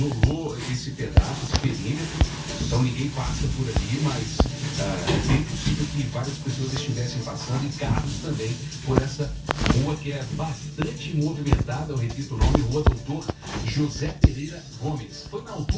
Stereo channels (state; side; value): identical; both; correlation 1.00